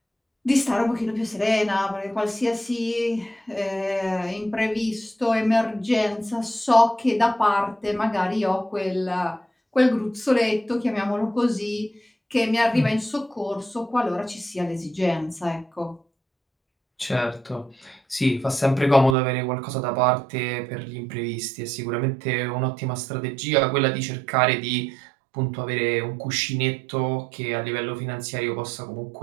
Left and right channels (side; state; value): left; drops out; at 19.2 s